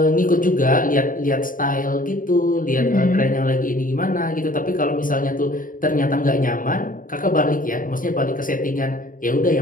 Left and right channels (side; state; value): right; late; 0.39 ms